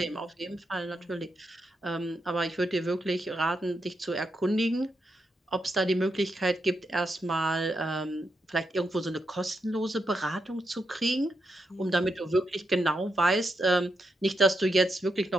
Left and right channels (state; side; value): normal; both; correlation 0.83